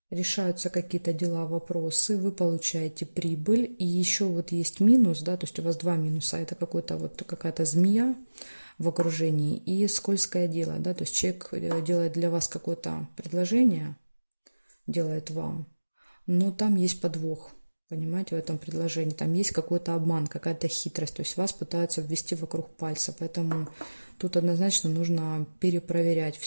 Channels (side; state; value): both; inverted; correlation -1.00